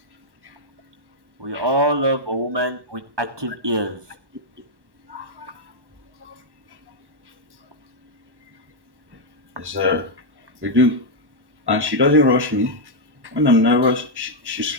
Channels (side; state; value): left; late; 1.1 ms